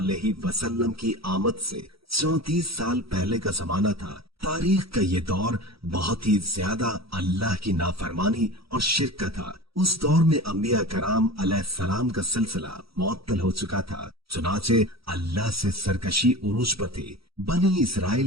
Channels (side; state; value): left; late; 0.76 ms